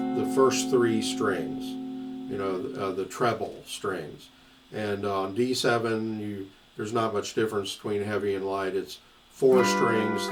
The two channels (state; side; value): identical; both; correlation 1.00